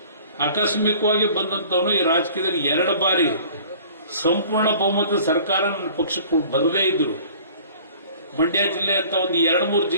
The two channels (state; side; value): inverted; both; correlation -0.49